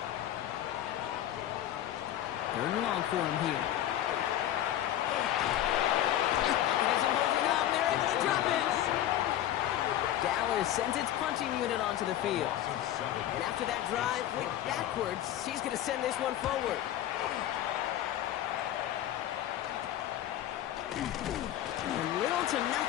3rd and long for him here. He isn't holding up. They're able to drop it. Dallas sends its punting unit onto the field. And after that drive went backwards, she's going to send this one forward. And little to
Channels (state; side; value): quieter; right; 12.3 dB